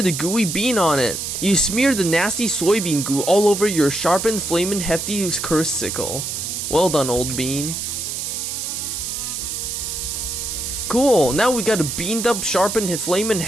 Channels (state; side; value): noise; right; hiss, 4 dB below the sound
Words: the gooey bean on it. You smear the nasty soybean goo all over your sharpened, flamin' hefty cursed sickle. Well done, old bean. Cool, now we got a beamed up, sharpened, flamin'